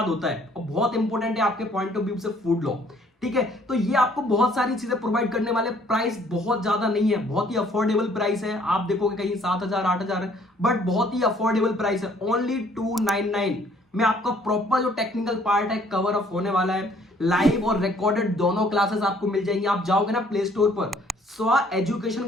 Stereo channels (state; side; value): normal; both; correlation 0.61